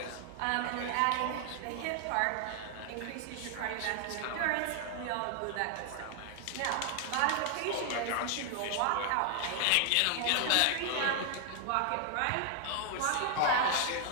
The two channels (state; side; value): different; both; correlation 0.00